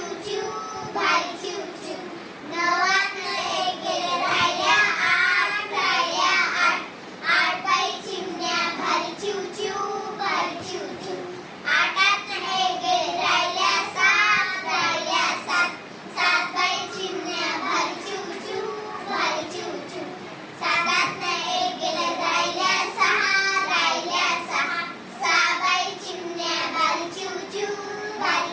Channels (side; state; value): both; identical; correlation 1.00